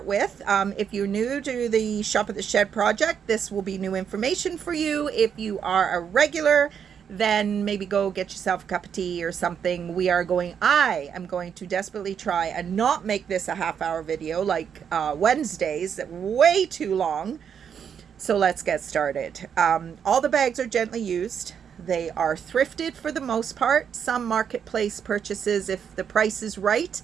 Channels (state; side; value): quieter; left; 7.7 dB